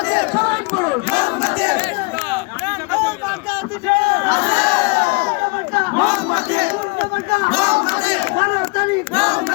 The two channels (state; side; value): quieter; right; 28.7 dB